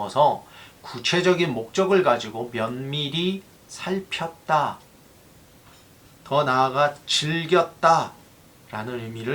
구체적인 목적을 가지고 면밀히 살폈다, 더 나아가 즐겼다 라는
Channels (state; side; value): identical; both; correlation 1.00